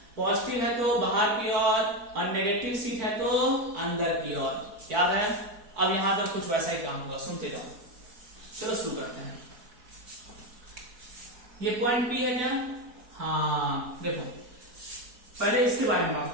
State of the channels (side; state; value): left; late; 4.5 ms